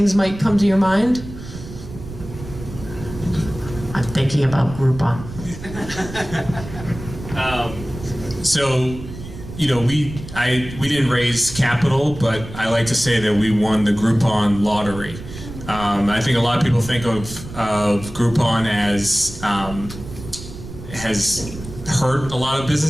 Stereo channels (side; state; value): right; noise; rumble, 12 dB below the sound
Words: might come to your mind. I'm thinking about Groupon. So, you know, we didn't raise capital, but I like to say that we won the Groupon lottery. I think a lot of people think of Groupon as has hurt a lot of